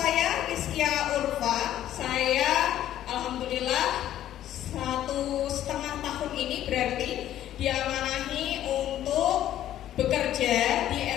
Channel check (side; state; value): right; quieter; 12.2 dB